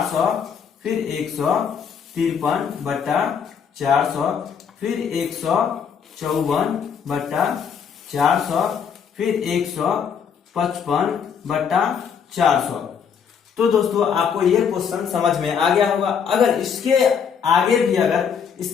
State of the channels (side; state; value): right; quieter; 7.0 dB